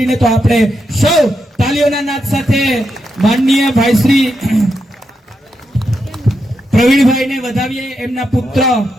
તો આપણે સૌ તાલીઓના નાદ સાથે માનનીય ભાઈ શ્રી પ્રવીણભાઈને વધાવીએ. એમના પુત્ર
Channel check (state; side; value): normal; both; correlation 0.84